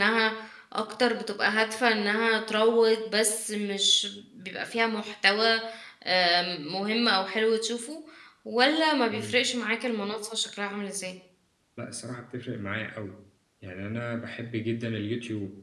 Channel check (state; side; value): identical; both; correlation 1.00